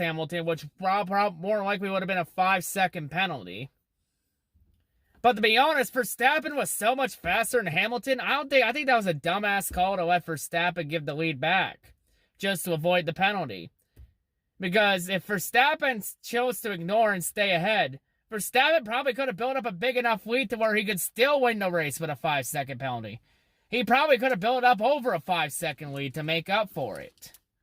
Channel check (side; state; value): both; identical; correlation 1.00